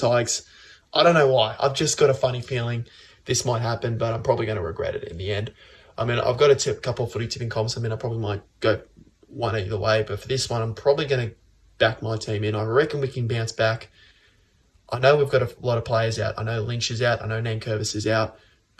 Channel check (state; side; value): identical; both; correlation 1.00